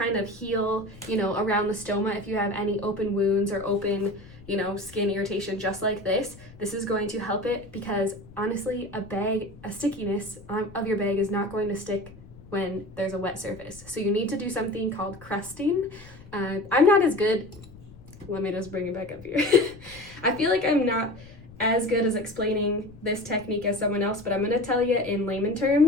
of heal, you know, around the stoma. If you have any open wounds or open, you know, skin irritation just like this is going to help it, because honestly, a stickiness of your bag is not going to stick when there's a wet surface. So you need to do something called crusting. I'm not as good. Let me just bring it back up here. I feel like I'm not as good as explaining this technique as someone else, but I'm going to tell you in layman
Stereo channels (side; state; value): left; noise; rumble, 20 dB below the sound